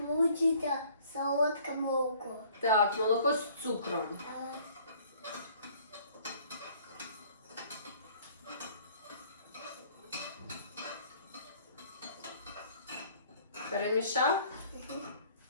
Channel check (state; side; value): inverted; both; correlation -0.56